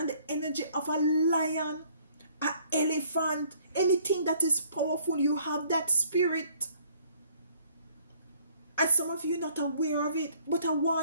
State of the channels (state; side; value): inverted; both; correlation -0.60